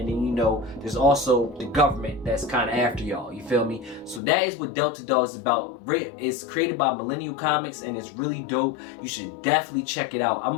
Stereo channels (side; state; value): right; drops out; at 4.2 s